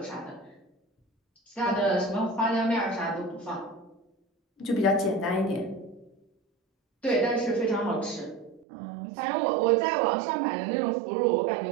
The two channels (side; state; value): left; drops out; at 8.7 s